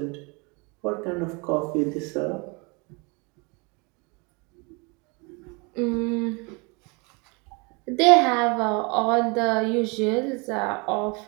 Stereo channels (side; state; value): left; quieter; 30.3 dB